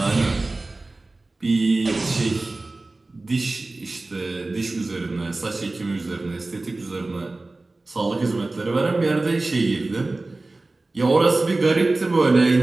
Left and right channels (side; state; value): left; quieter; 3.1 dB